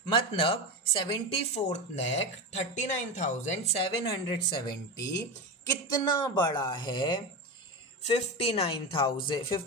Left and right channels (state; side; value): normal; both; correlation 0.19